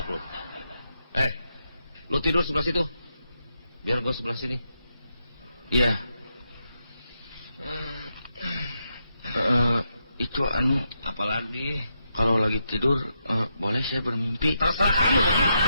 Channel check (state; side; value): inverted; both; correlation -0.83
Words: lu. Lu tidur sebelah situ. Biar gua sebelah sini. Iya. Itu Apalagi? kalau lagi tidur boleh saya bermimpi? Terserah kamu begitu.